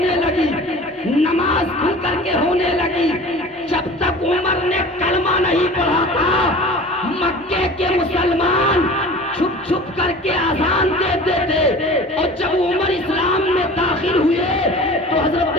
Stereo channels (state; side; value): normal; both; correlation 0.40